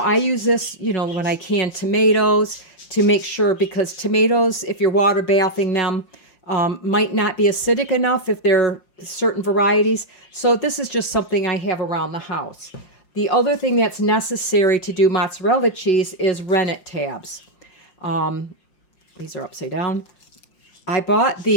use this, you know, when I can tomatoes to make sure, because tomatoes, if you're water bathing them, might not be acidic enough if they're certain varieties. So this is just something I have around the house. The other thing that's necessary to do mozzarella cheese is rennet tabs. These are upside down. I bought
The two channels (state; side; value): late; right; 5.7 ms